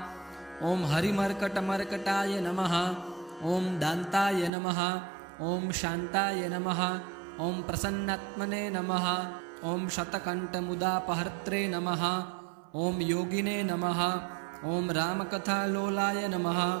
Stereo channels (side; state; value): left; drops out; at 4.5 s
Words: ॐ हरिमर्कटमर्कटाय नमः। ॐ दान्ताय नमः। ॐ शान्ताय नमः। ॐ प्रसन्नात्मने नमः। ॐ शतकण्ठमुदापहर्त्रे नमः। ॐ योगिने नमः। ॐ रामकथालोलाय नमः।